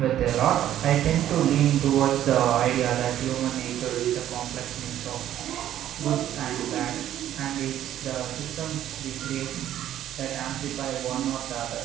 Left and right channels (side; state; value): left; quieter; 11.8 dB